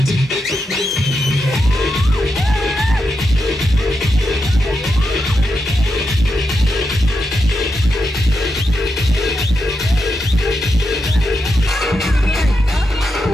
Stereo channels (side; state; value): both; normal; correlation 0.85